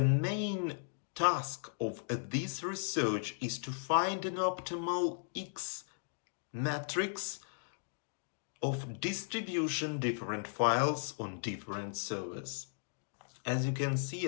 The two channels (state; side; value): silent; right; digital silence